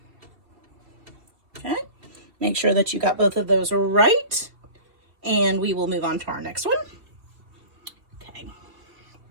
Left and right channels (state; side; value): late; left; 2.7 ms